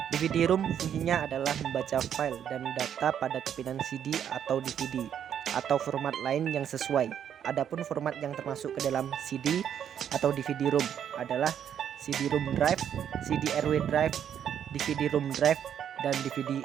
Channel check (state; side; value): quieter; left; 9.1 dB